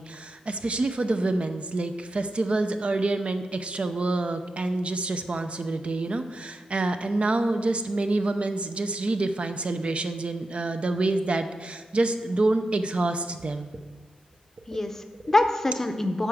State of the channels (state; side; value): normal; both; correlation 0.89